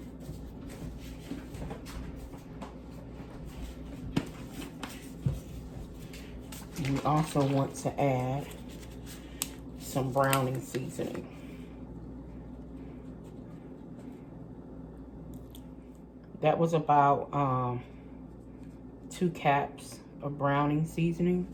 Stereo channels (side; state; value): both; identical; correlation 1.00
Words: You also want to add some browning seasoning. That was about 2 caps of browning seasoning.